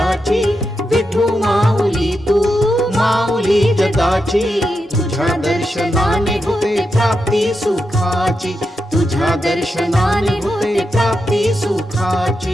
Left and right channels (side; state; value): both; normal; correlation 0.87